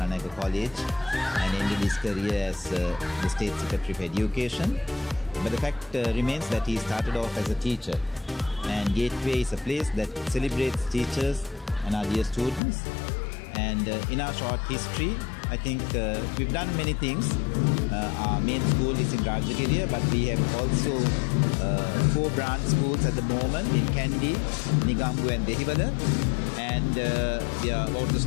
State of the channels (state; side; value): drops out; right; at 12.6 s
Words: College and ended his career as the State Secretary for Education. But the fact remains that he started off as a teacher, and Gateway is a place that celebrates teachers and our dear students. And in our short history, I think we've done many things. Our main school is in Rajagiriya, but we have also 4 branch schools at the moment in Kandy, Nigambu and Dehiwala. And we are about to